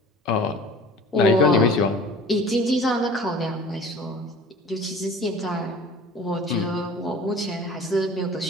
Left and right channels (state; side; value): normal; both; correlation 0.44